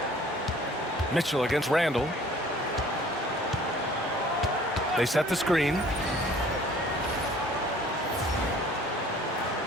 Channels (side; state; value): both; normal; correlation 0.52